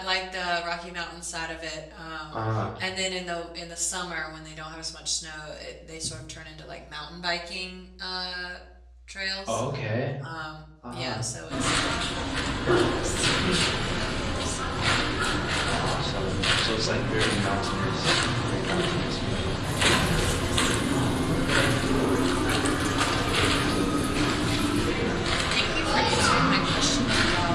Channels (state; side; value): identical; both; correlation 1.00